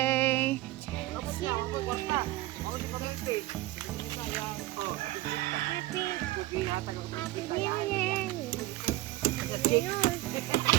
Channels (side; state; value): left; quieter; 17.1 dB